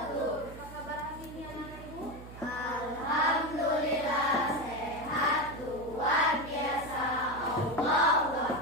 Apa kabar hari ini anak-anak Ibu? Alhamdulillah sehat, luar biasa. Allahu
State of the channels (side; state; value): right; noise; hum, 15 dB below the sound